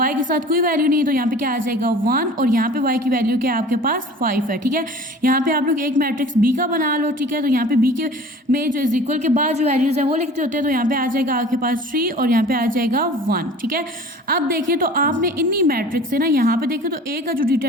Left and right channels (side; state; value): both; normal; correlation 0.43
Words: के साथ कोई वैल्यू नहीं, तो यहाँ पे क्या आ जाएगा 1, और यहाँ पे y की वैल्यू क्या है आपके पास 5 है, ठीक है। यहाँ पे आप लोग एक मैट्रिक्स b का बना लो, ठीक है। तो यहाँ पे b के में जो इज इक्वल के बाद जो वैल्यूज है वो लिखते होते हैं, तो यहाँ पे आ जाएगा आपके पास 3 और यहाँ पे आ जाएगा 1, ठीक है। अब देखिए तो आपने इन्हीं मैट्रिक्स से ना यहाँ पे देखिए तो a का जो